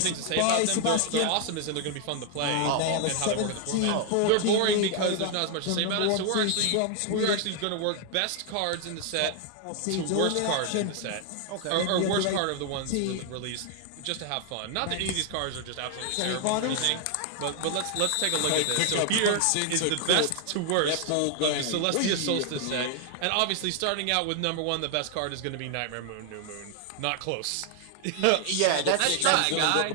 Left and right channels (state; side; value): different; both; correlation 0.00